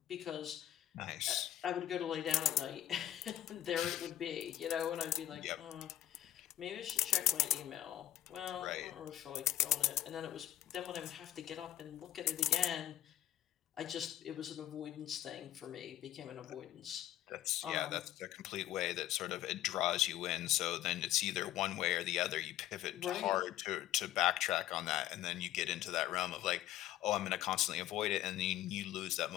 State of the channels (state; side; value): quieter; right; 13.1 dB